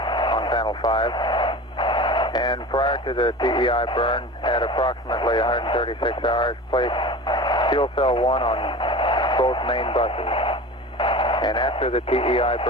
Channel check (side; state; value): both; normal; correlation 0.34